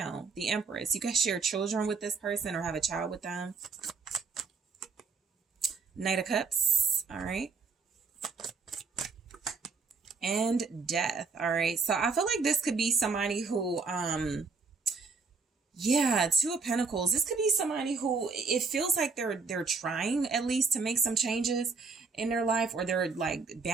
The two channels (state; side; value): quieter; left; 4.7 dB